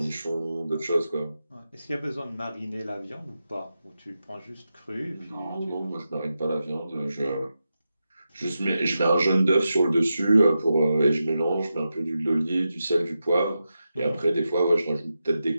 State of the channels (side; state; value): both; inverted; correlation -0.90